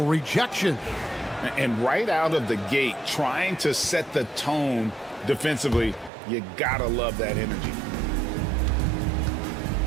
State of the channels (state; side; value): drops out; left; at 6.1 s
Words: rejection. And right out of the gate, trying to set the tone defensively, you gotta love that energy.